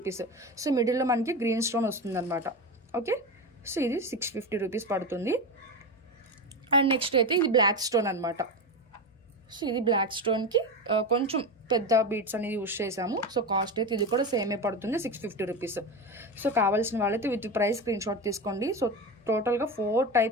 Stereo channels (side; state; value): both; normal; correlation 0.20